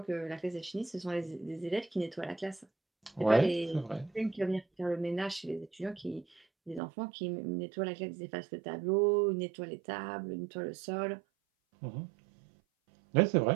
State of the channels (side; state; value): left; drops out; at 6.8 s